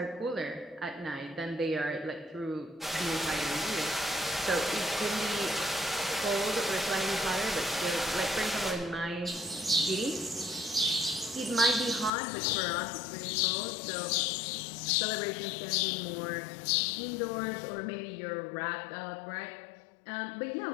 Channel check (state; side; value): drops out; right; at 12.1 s